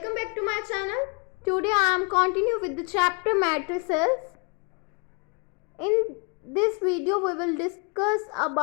back to my channel. Today I am continuing with the chapter matrices. In this video we will discuss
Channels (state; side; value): quieter; right; 33.6 dB